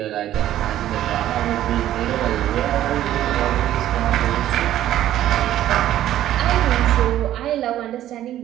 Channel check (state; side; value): quieter; left; 12.7 dB